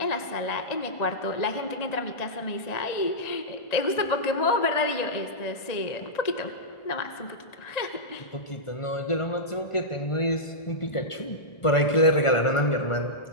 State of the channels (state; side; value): late; right; 1.5 ms